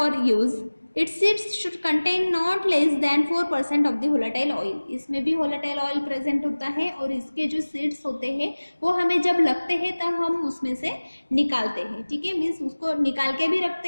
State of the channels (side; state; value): both; inverted; correlation -1.00